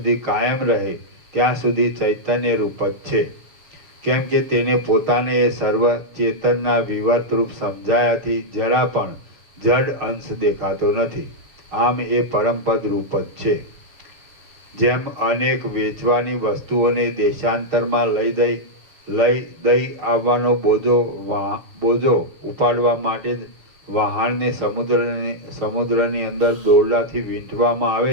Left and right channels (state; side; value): late; left; 6.5 ms